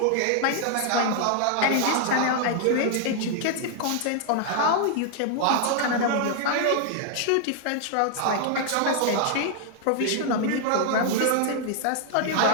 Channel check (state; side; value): different; both; correlation 0.00